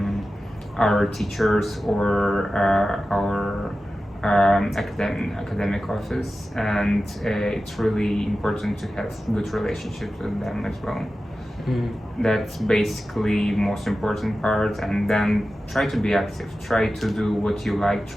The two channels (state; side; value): normal; both; correlation 0.94